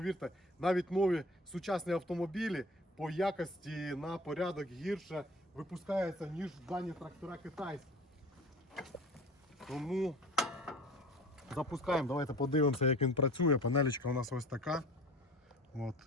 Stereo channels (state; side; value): normal; both; correlation 0.44